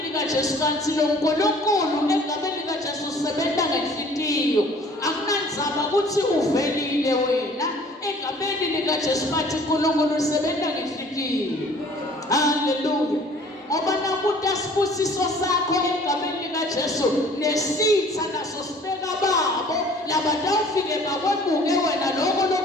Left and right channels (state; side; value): normal; both; correlation 0.52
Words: likaJesu. Kanti lo uNkulunkulu egameni likaJesu usebenza ngenhliziyo. Akunandzaba ukuthi uvelile wena egameni likaJesu, bathi uNkulunkulu usebenza ngenhliziyo. Hallelujah. Ngoba nakuthi asibusiso sakho egameni likaJesu nesitha naso sibeka babo labatawufike bakwebuke wena lokho